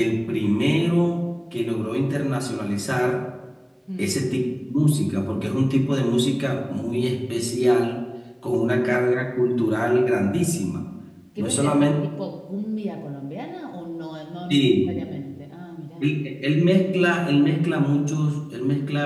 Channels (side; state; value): both; identical; correlation 1.00